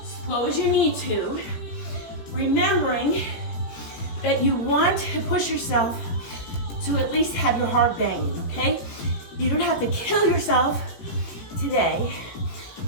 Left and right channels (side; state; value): right; late; 18 ms